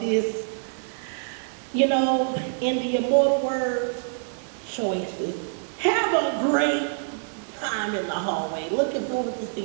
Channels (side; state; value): left; silent; 61 dB below the other